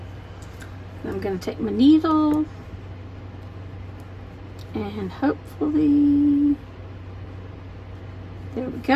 I'm going to take my needle and hopefully, there we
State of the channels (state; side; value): identical; both; correlation 1.00